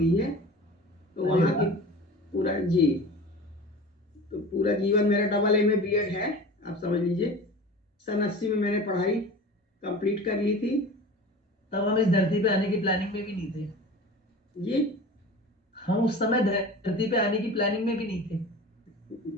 है, तो अरे वहाँ की वाह। पूरा जी, तो पूरा जीवन मेरा AA में बीएड है, आप समझ लीजिए। सन 80 में मैंने पढ़ाई कंप्लीट कर ली थी। तब हम इस धरती पे आने की प्लानिंग में भी नहीं थे। जी, हम उस समय धरती पे आने की प्लानिंग में भी नहीं थे।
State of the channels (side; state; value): both; normal; correlation 0.37